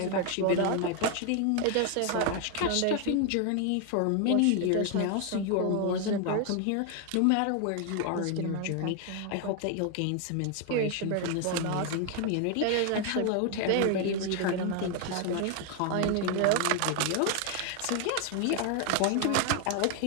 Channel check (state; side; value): different; both; correlation 0.01